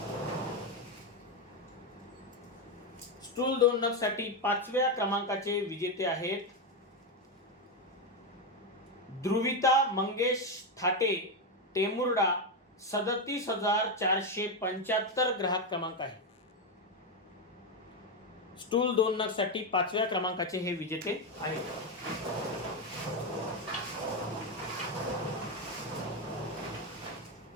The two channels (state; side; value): normal; both; correlation 0.08